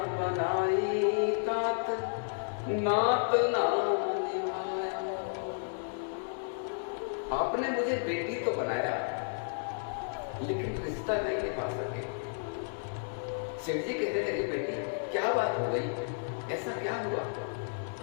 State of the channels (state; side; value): silent; right; digital silence